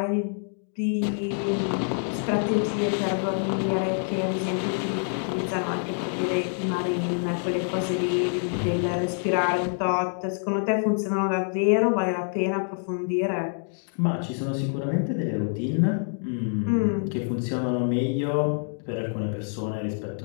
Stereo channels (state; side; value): silent; right; 61 dB below the other